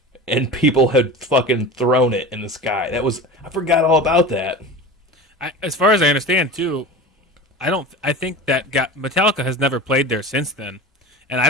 and people had fucking thrown it in the sky. I forgot all about that. As far as I understand, too, I think that Metallica has never played there since then, and I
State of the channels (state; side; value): normal; both; correlation 0.33